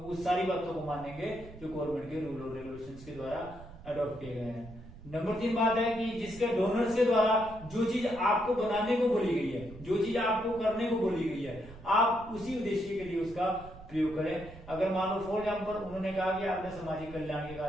उस सारी बातों को मानेंगे जो गवर्नमेंट के रूल और रेगुलेशंस के द्वारा अडॉप्ट किए गए हैं। नंबर 3 बात है कि जिसके डोनर्स के द्वारा जो चीज आपको बनाने को बोली गई है, जो चीज आपको करने को बोली गई है, आप उसी उद्देश्य के लिए उसका प्रयोग करें। अगर मान लो फॉर एग्जाम्पल उन्होंने कहा कि आपने सामाजिक कल्याण के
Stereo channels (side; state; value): right; noise; rumble, 17 dB below the sound